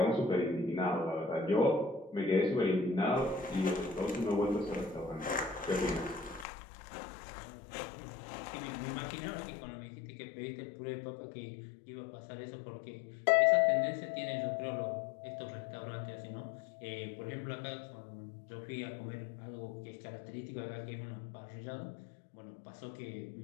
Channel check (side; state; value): right; drops out; at 6.5 s